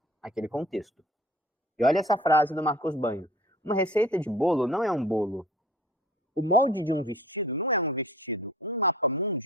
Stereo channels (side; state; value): both; normal; correlation 0.46